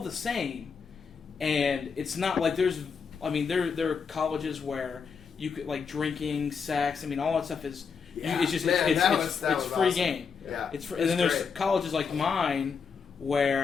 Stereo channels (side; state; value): right; quieter; 5.8 dB